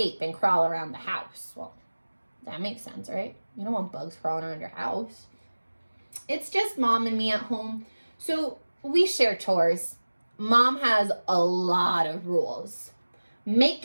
and crawl around the house. Well, that makes sense, right? You don't want bugs crawling around your house. It's just Mom and me at home, so we share chores. Mom has a lot of rules. Make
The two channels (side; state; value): both; inverted; correlation -1.00